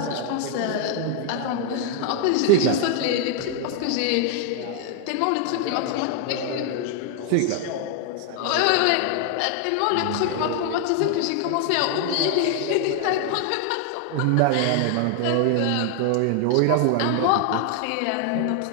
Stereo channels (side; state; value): both; different; correlation 0.00